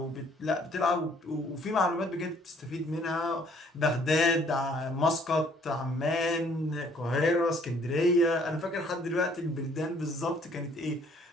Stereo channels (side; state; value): both; normal; correlation 0.61